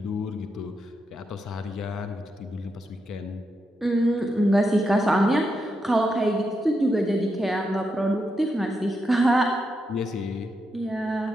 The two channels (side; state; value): both; normal; correlation 0.84